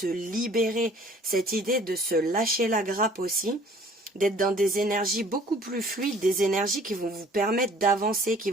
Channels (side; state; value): both; normal; correlation 0.53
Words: libérer, cette idée de se lâcher la grappe aussi, d'être dans des énergies beaucoup plus fluides, des énergies qui vont vous permettre d'avancer, qui